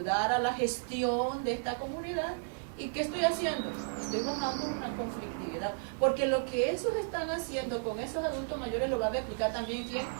a la gestión de esta comunidad. ¿Y qué estoy haciendo? Estoy bajando una conflictividad, porque lo que esos están haciendo con esos adultos mayores lo va a replicar también ¿quién?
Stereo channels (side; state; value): left; silent; digital silence